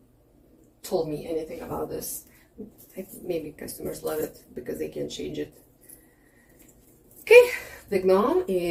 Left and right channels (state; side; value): identical; both; correlation 1.00